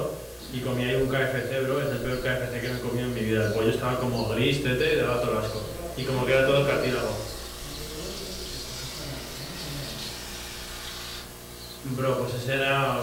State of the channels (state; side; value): identical; both; correlation 1.00